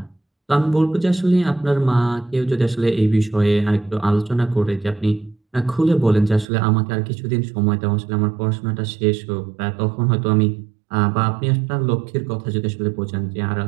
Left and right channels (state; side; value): drops out; left; at 6.5 s